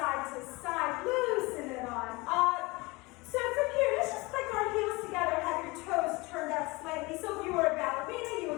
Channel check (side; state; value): right; quieter; 24.1 dB